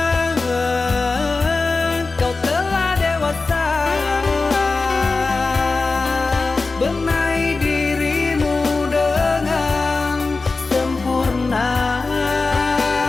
Kau telah dewasa, benahi dirimu dengan sempurna.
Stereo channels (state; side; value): quieter; right; 3.8 dB